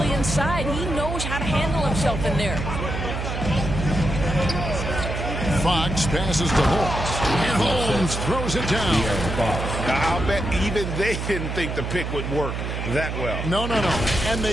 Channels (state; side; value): noise; right; hum, 4 dB below the sound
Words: inside. He knows how to handle himself in there. Fox passes to Holmes, and Holmes throws it down. I'll bet even they didn't think the pick would work that well. No. And